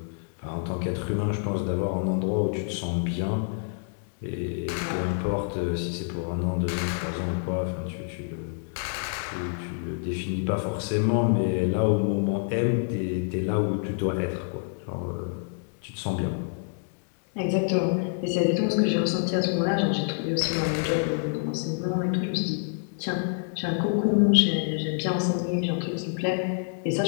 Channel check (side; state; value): right; silent; digital silence